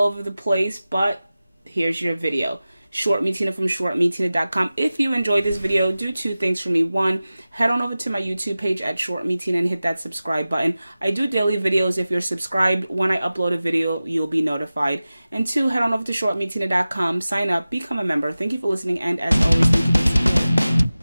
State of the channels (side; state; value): both; inverted; correlation -0.96